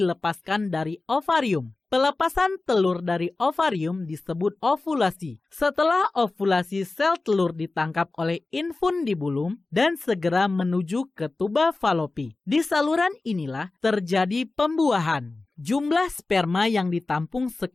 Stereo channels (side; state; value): right; quieter; 3.4 dB